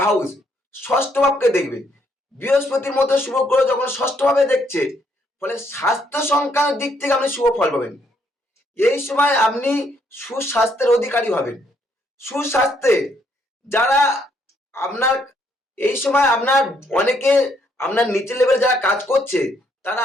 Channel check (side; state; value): both; normal; correlation 0.71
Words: হাউস, ষষ্ঠ ভাবকে দেখবে। বৃহস্পতির মতো শুভ গ্রহ যখন ষষ্ঠ ভাবে দেখছে, ফলে স্বাস্থ্য সংক্রান্ত দিক থেকে আপনি শুভ ফল পাবেন। এই সময় আপনি সুস্বাস্থ্যের অধিকারী হবেন। সুস্বাস্থ্যে যারা আপনার এই সময় আপনার অনেকে আপনার নিচে লেভেলে যারা কাজ করছে, তারা